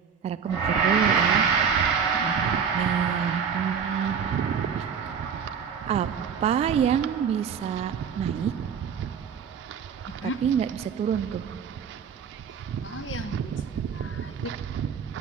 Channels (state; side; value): quieter; left; 6.9 dB